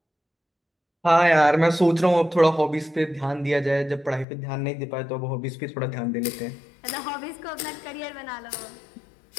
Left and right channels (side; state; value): right; drops out; at 4.2 s